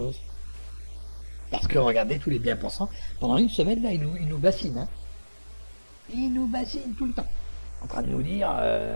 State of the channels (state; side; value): inverted; both; correlation -1.00